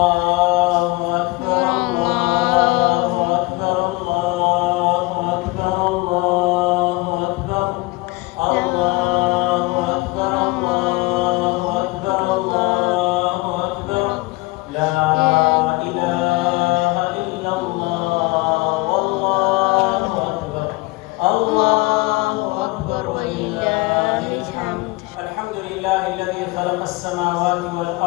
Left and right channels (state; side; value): quieter; right; 23.3 dB